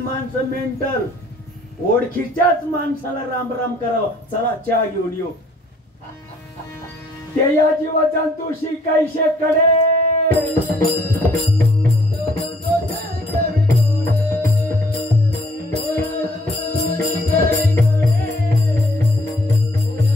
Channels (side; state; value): both; normal; correlation 0.61